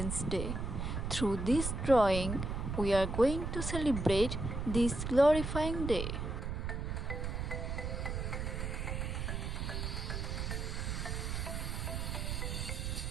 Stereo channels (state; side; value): noise; right; rumble, 2 dB below the sound